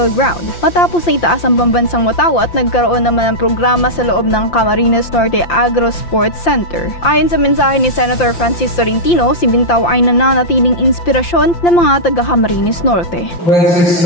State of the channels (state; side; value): late; right; 5.8 ms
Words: ground. Matapos na itaas ang pambansang watawat, nagkaroon naman ng programa sa loob ng Camarines Norte Agro Sports Center. Ayon sa mensahe ni Senator Francis Tolentino, si Bintao ay nananatiling inspirasyon ng mga taga-Camarines Norte.